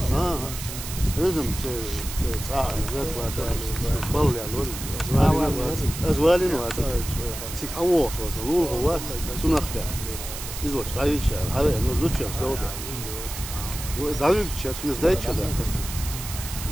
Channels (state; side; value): noise; right; hiss, 9 dB below the sound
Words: Ha. لازم تصاحب ذاك بطل يعني أزوالي نواتي سيك حوش وصلوا هو سنخك إزوج رايك شيء هذا إنه زوج شيء سلوده وداويك شيء سويس دايت شيء